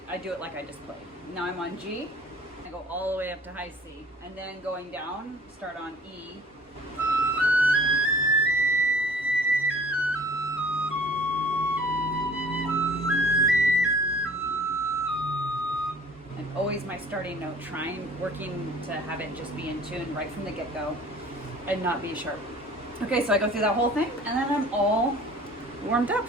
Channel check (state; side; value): normal; both; correlation 0.50